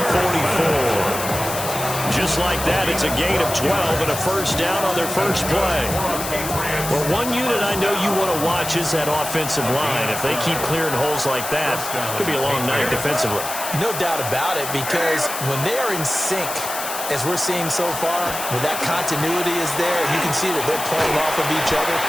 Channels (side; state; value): left; noise; hiss, 6 dB below the sound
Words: 44. Just like that, it's a gain of 12 and a first down on their first play. Well, one unit I know you want to watch is that offensive line. If they keep clearing holes like that, it could be a long night defensively. No doubt about it, because when they are in sync, As we're seeing so far, when that continuity is there, you can see that they're playing off of each other